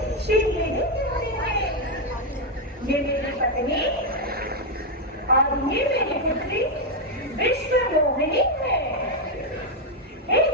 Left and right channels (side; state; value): both; normal; correlation 0.02